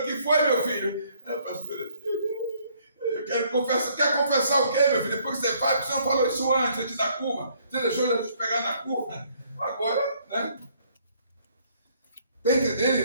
o que foi, meu filho? Pastora, eu quero confessar. Quer confessar o quê, meu filho? Depois que você faz, você não falou isso antes da curva. Você deixou ele te pegar na curva. Agora, né? Está entendendo,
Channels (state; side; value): inverted; both; correlation -0.65